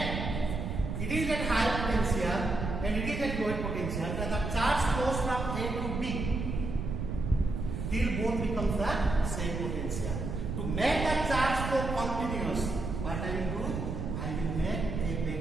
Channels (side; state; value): right; noise; rumble, 3 dB below the sound